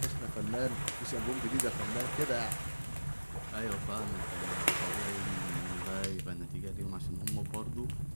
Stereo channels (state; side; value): inverted; both; correlation -1.00